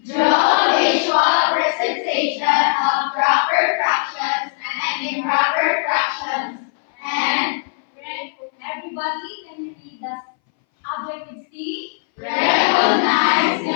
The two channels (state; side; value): silent; right; 63 dB below the other